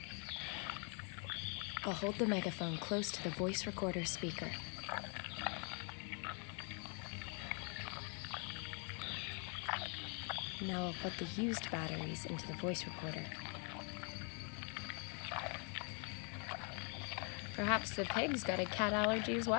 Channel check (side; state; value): right; quieter; 39.0 dB